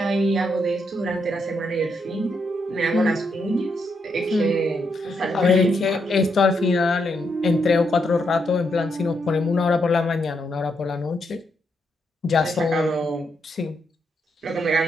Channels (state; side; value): normal; both; correlation 0.79